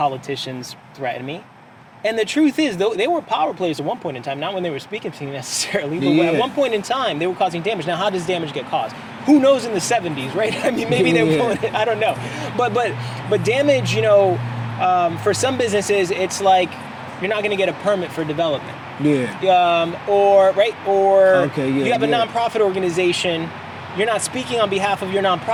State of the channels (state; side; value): identical; both; correlation 1.00